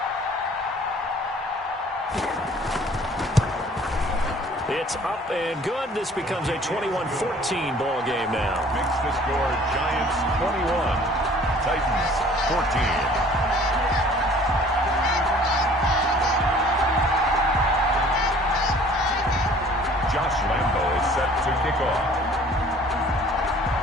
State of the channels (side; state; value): both; normal; correlation 0.52